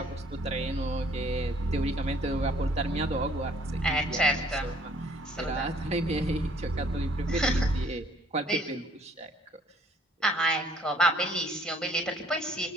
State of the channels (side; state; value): both; normal; correlation 0.60